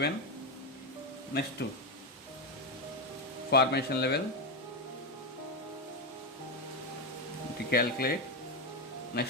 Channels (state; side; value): normal; both; correlation 0.09